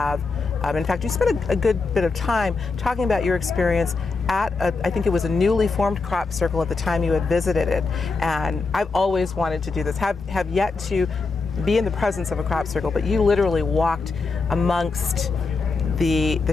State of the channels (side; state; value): right; quieter; 4.1 dB